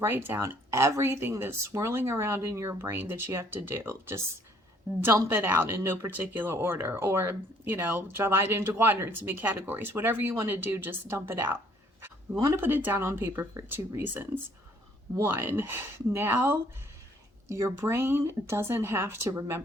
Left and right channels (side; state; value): both; normal; correlation 0.62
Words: down everything that's swirling around in your brain that you have to do. Just dump it out in no particular order, or, divide it into quadrants and make categories. Whatever you want to do, just dump it out. We want to put it down on paper for 2 reasons. 1, now your brain doesn't have to